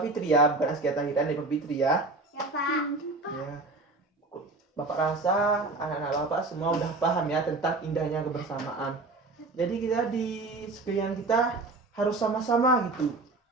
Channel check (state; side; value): quieter; left; 3.3 dB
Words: Fitri ya, bukan Askia Tahira, Nadipa Fitri ya. Ya Pak. Ya. Bapak rasa anak-anak Bapak semua udah paham ya tentang indahnya kebersamaan. Jadi kita di sekalian kita harus sama-sama gitu.